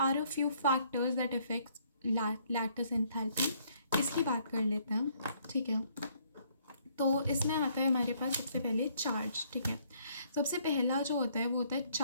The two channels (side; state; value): both; inverted; correlation -0.66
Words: a few factors that effects lattice enthalpy. इसकी बात कर लेते हैं, ठीक है. तो इसमें आता है हमारे पास सबसे पहले चार्ज, ठीक है. सबसे पहला जो होता है वो होता है